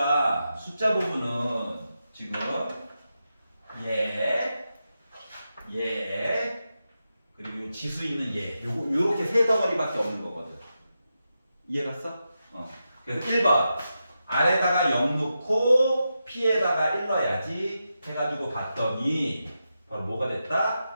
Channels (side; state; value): both; inverted; correlation -0.89